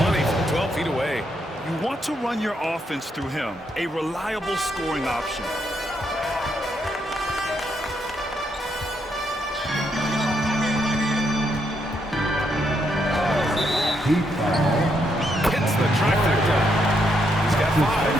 from 12 feet away. You want to run your offense through him, a reliable scoring option. Hits the trifecta. He's got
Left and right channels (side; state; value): both; normal; correlation 0.77